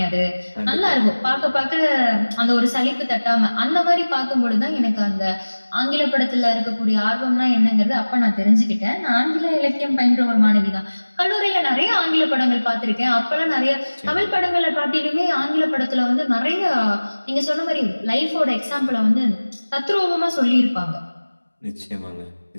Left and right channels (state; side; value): inverted; both; correlation -1.00